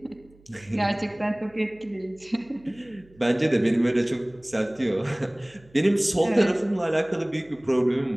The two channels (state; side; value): noise; right; hum, 28 dB below the sound